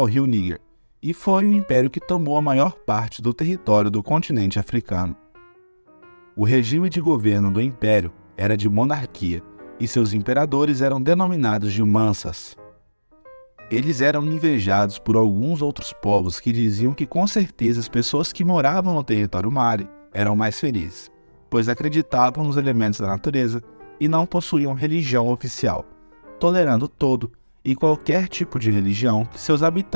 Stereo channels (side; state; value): both; inverted; correlation -1.00